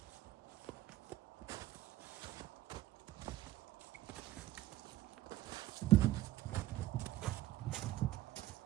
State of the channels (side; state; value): left; quieter; 15.1 dB